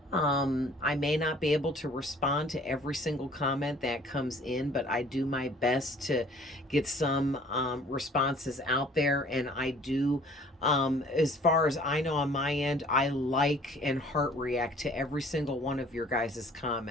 I may not be able to respond to every single comment that comes in, but I do my best to get some responses out there. And I do, as far as I know on my end, I like and heart react to every single one of your guys'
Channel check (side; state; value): both; normal; correlation 0.53